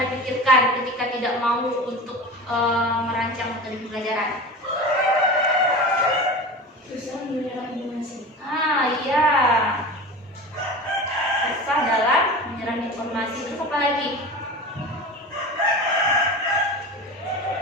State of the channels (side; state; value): both; normal; correlation 0.32